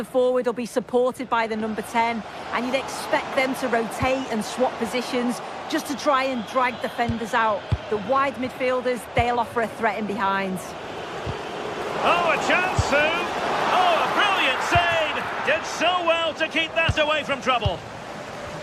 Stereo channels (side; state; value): both; identical; correlation 1.00